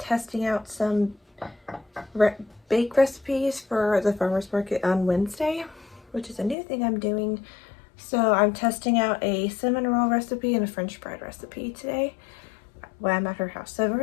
out some bake recipes for the farmer's market on Wednesday, which is a new thing I'm doing. So I'm testing out a cinnamon roll recipe and a French bread recipe today while I'm at her house. So I've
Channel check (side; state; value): right; drops out; at 6.6 s